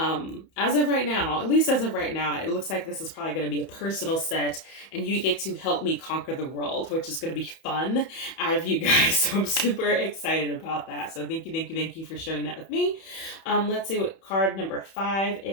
of right now, at least as of right now, it looks like this is probably going to be a personal set, and you get to help me conquer the world, which is going to be fun out of you guys. So I'm super excited about that. So thank you for sharing that with me. Let's see what card number 5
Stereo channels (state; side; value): late; right; 31 ms